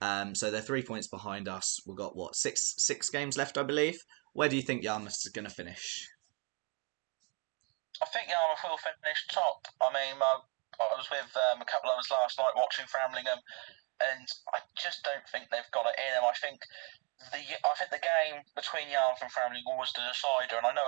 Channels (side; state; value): left; quieter; 35.0 dB